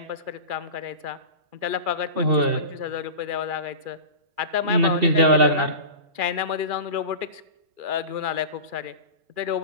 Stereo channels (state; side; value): late; left; 2.4 ms